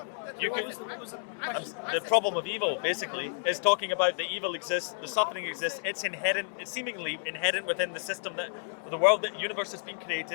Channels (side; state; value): right; silent; 57 dB below the other